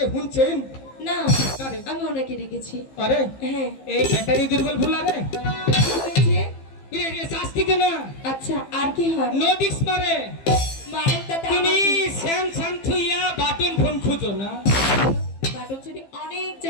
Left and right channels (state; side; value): late; right; 15 ms